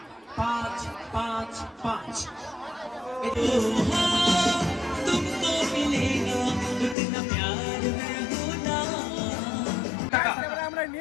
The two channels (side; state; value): right; drops out; at 7.0 s